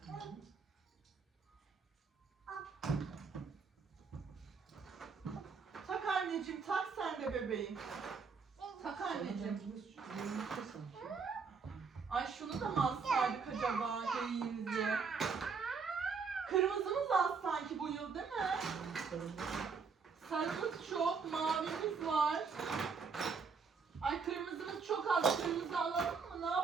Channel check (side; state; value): left; quieter; 5.3 dB